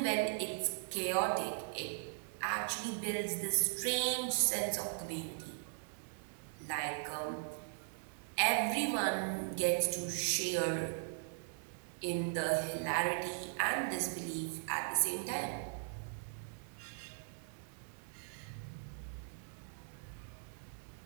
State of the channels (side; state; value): left; silent; digital silence